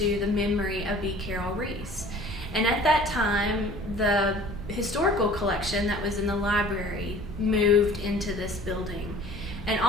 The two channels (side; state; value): both; normal; correlation 0.47